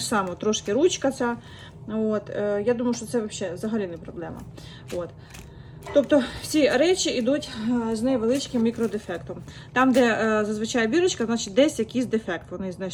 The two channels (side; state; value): both; identical; correlation 1.00